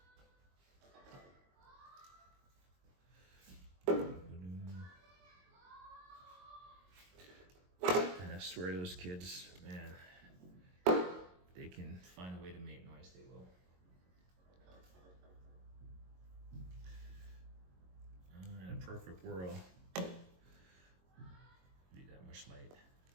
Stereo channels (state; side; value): late; left; 22 ms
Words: And I swear to those kids, man, they can find a way to make noise, they will. In a perfect world, be that much light